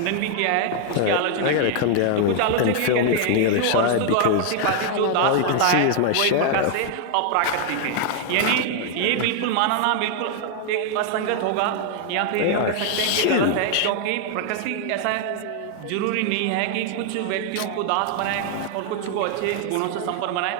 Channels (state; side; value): different; both; correlation 0.00